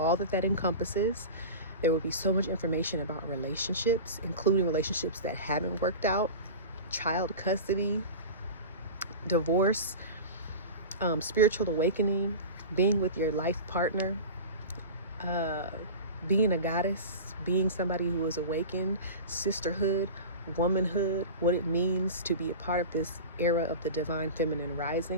that encompasses. There will be so much information about relationships, including relationships that haven't worked out, child custody, divorce, spiritual awakening, being with your life partner, being a goddess, being somebody who is awakened, sisterhood, womanhood, what it means to be a part of this era of the divine feminine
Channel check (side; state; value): both; inverted; correlation -0.31